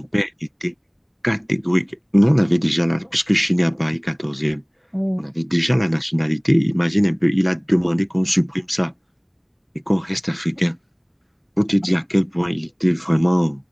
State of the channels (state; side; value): identical; both; correlation 1.00